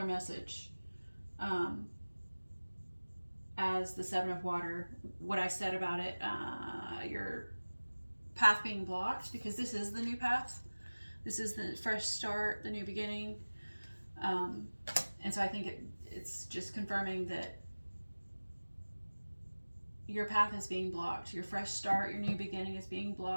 message as the Seven of Water. What I said about it, your path being blocked, because this is the new path. This is the fresh start, the new beginning. And so I think it's just confirming that your path is being blocked. Your fresh start, your new beginning is being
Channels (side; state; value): both; inverted; correlation -1.00